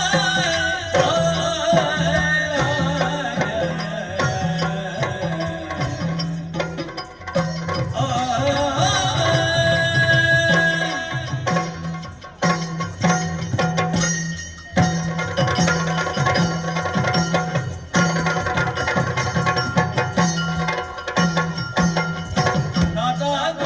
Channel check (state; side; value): identical; both; correlation 1.00